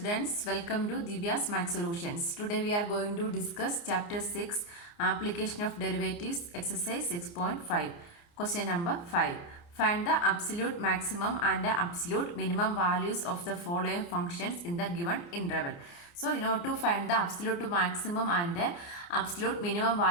welcome to Divya's Math Solutions. Today we are going to discuss Chapter 6, Application of Derivatives, Exercise 6.5. Question number 5. Find the absolute maximum and the absolute minimum values of the following functions in the given interval. So, in order to find the absolute maximum and the absolute minimum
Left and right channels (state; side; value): late; right; 29 ms